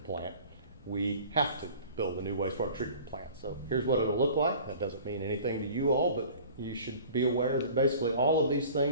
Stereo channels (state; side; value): inverted; both; correlation -0.45